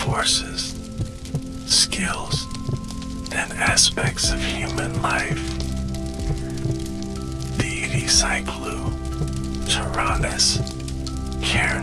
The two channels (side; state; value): both; identical; correlation 1.00